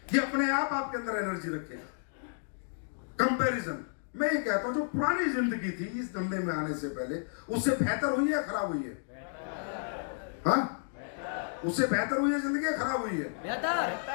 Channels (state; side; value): silent; right; digital silence